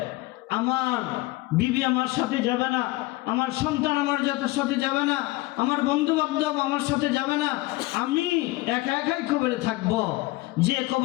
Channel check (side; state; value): right; quieter; 20.3 dB